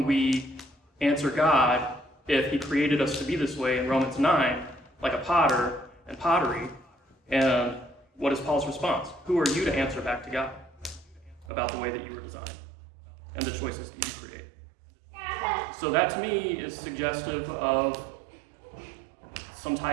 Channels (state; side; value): drops out; left; at 11.5 s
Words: we answer God if he created us to be this way in Romans 9, like a potter and pottery? And what is Paul's response? Who are you to answer back to God about the way that you were designed and the choices that you create? So that to me is suggestive of some